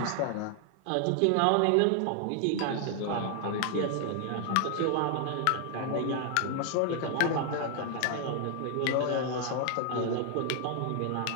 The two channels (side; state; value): both; different; correlation 0.00